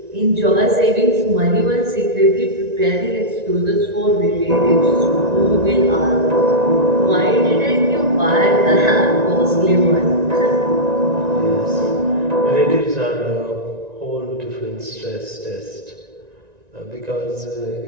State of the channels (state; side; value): late; left; 1.9 ms